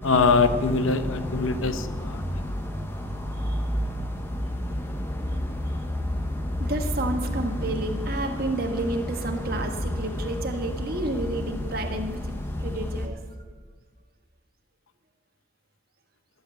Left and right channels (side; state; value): both; normal; correlation 0.42